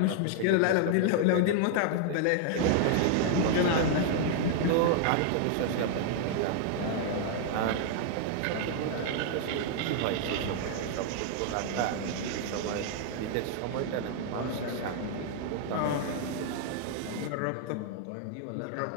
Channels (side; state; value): both; different; correlation -0.01